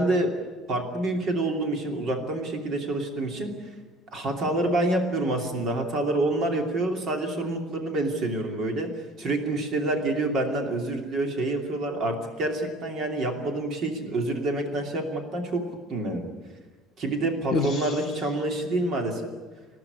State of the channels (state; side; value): normal; both; correlation 0.47